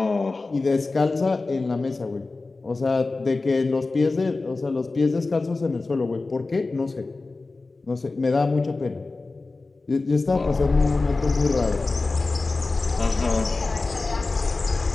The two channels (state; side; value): quieter; right; 3.6 dB